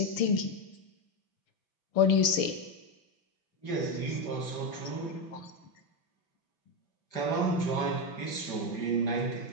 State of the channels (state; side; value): late; right; 5.9 ms